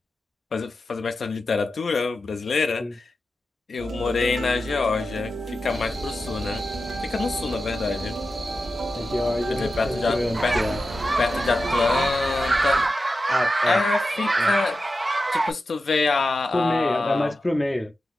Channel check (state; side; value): normal; both; correlation 0.91